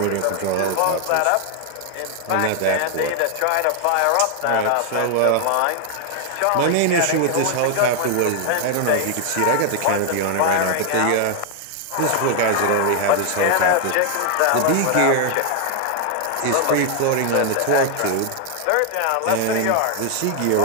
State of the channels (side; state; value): both; different; correlation 0.00